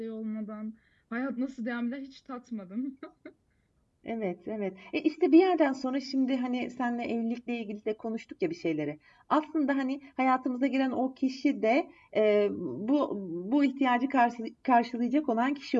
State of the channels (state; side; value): identical; both; correlation 1.00